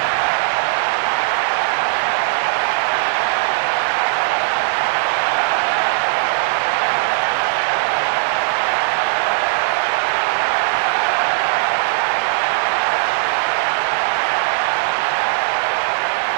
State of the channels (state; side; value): silent; left; digital silence